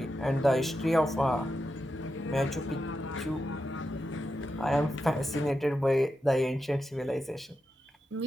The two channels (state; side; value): normal; both; correlation 0.88